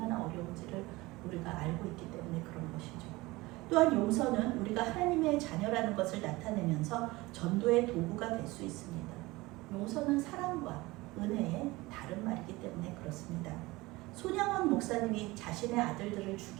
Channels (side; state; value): left; quieter; 21.1 dB